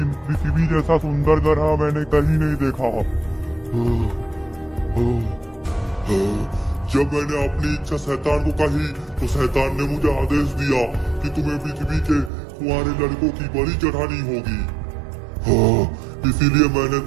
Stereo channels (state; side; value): drops out; left; at 12.3 s